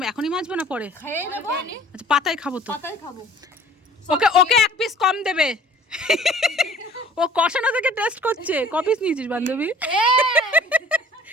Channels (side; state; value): both; normal; correlation 0.50